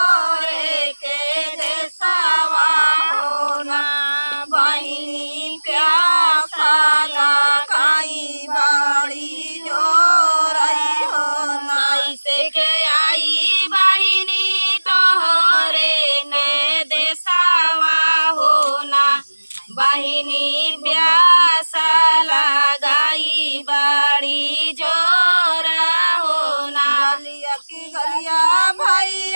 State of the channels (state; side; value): inverted; both; correlation -1.00